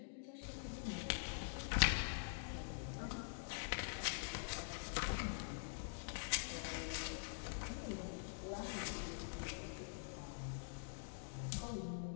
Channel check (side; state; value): right; silent; digital silence